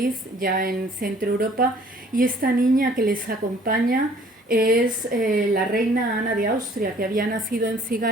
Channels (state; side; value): normal; both; correlation 0.57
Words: ya en Centro Europa, y esta niña que les acompaña es la reina Ana de Austria, que había nacido en